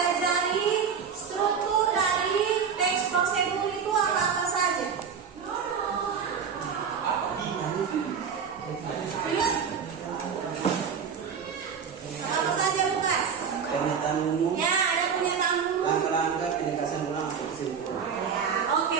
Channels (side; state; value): left; quieter; 6.7 dB